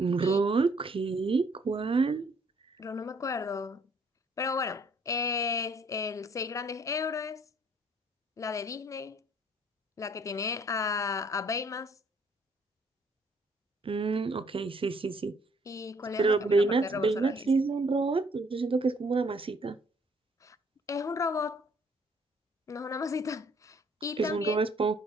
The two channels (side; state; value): both; normal; correlation 0.62